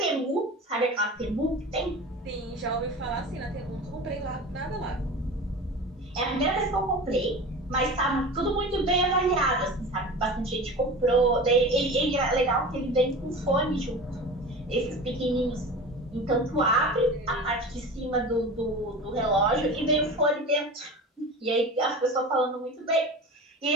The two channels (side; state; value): both; normal; correlation 0.33